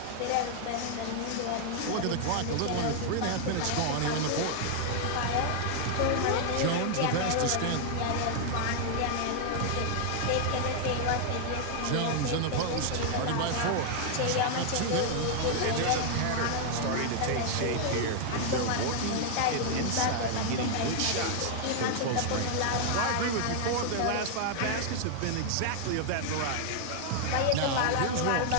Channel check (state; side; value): different; both; correlation 0.00